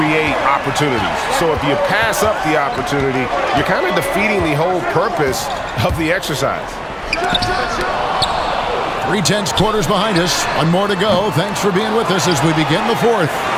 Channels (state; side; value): identical; both; correlation 1.00